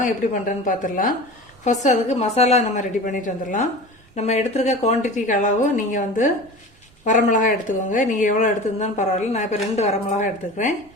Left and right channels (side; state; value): both; normal; correlation 0.34